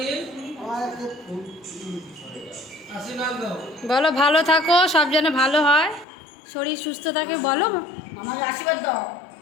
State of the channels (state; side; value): drops out; right; at 6.1 s